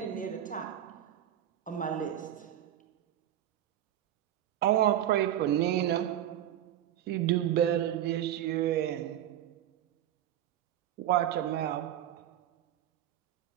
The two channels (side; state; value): left; quieter; 11.4 dB